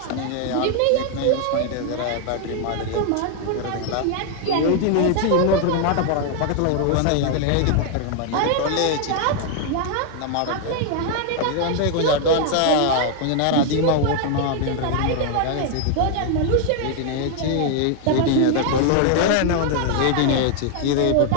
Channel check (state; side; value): different; both; correlation 0.00